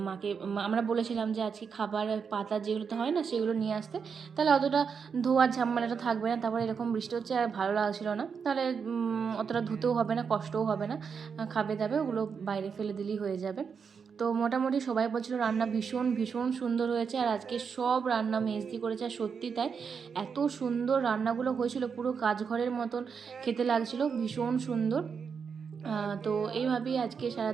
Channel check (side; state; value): left; quieter; 6.2 dB